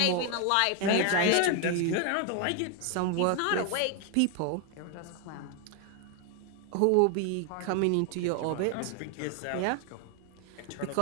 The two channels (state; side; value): different; both; correlation 0.01